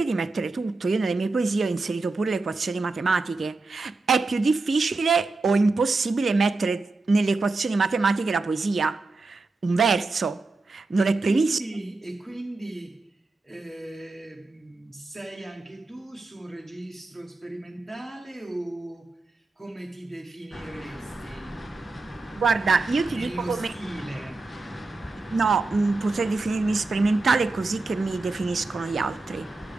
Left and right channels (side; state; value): left; quieter; 3.5 dB